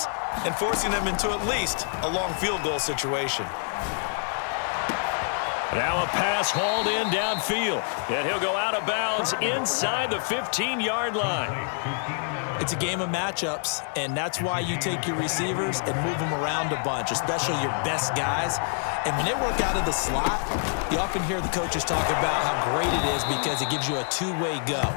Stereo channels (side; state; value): right; silent; 61 dB below the other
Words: and forcing them into at least a long field goal situation. Now a pass hauled in downfield, and he'll go out of bounds inside the 15-yard line. It's a game of matchups, and that's why you take your receivers and move them around a bunch, especially your best guys. And when they work out of the slot, you often hear the coaches talk about how great it is because it gives you a two-way go.